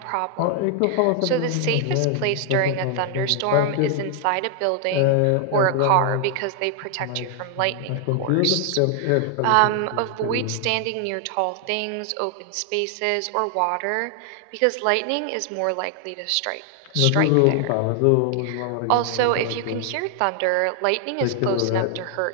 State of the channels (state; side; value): different; both; correlation 0.00